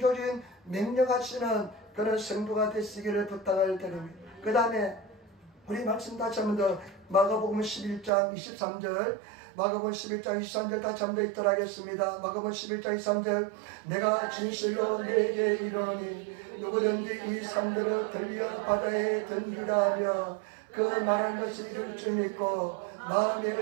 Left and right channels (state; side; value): drops out; left; at 8.1 s